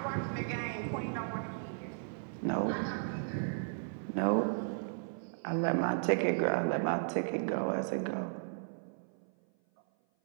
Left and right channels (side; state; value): left; silent; 54 dB below the other